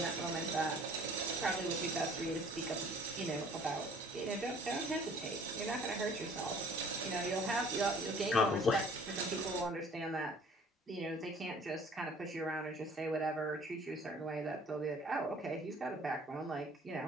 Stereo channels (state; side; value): normal; both; correlation 0.52